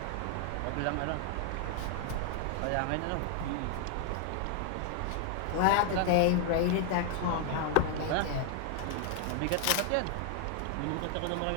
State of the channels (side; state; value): both; different; correlation 0.00